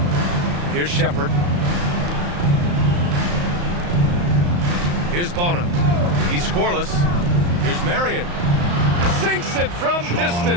Here's Shepard. Here's Bona. He's scoreless. Here's Marion. Sinks it from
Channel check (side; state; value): left; late; 34 ms